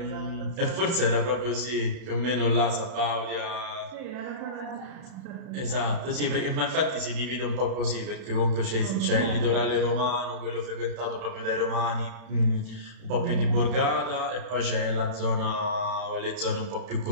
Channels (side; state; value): left; late; 31 ms